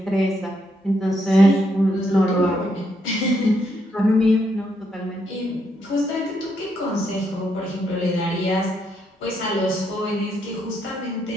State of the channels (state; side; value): normal; both; correlation 0.77